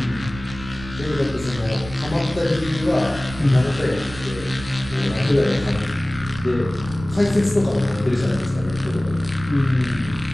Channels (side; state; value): right; noise; rumble, 14 dB below the sound